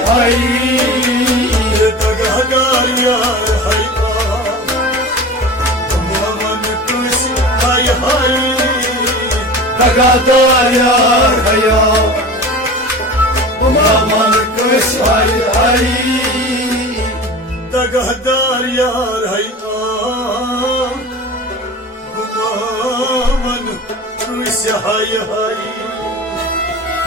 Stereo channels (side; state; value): both; normal; correlation 0.34